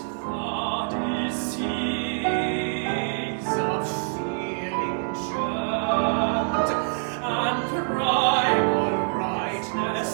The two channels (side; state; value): left; silent; 61 dB below the other